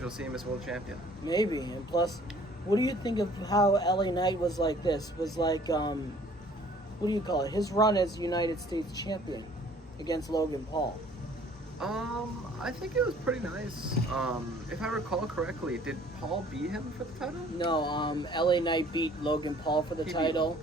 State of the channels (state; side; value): normal; both; correlation 0.55